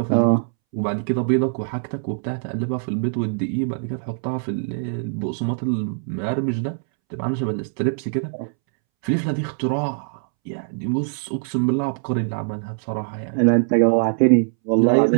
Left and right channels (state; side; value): silent; left; 64 dB below the other